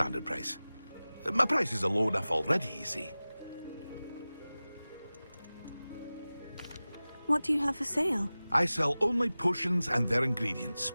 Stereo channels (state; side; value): inverted; both; correlation -0.97